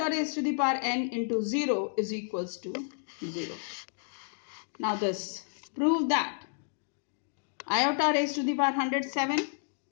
raised to the power n into 0 is equals to 0. Now this, prove that iota raised to the power 107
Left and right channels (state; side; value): silent; right; digital silence